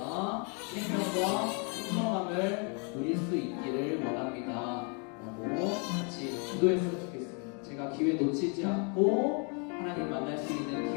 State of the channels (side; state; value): right; quieter; 37.0 dB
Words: 생명과 풍성함을 누릴 수 있기를 원합니다 라고 같이 기도했으면 좋겠습니다. 제가 기회 놓치지 않고 하나님 만날 수 있는